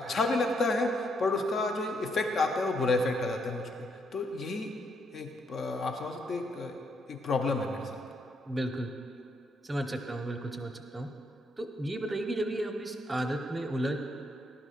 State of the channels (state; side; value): normal; both; correlation 0.75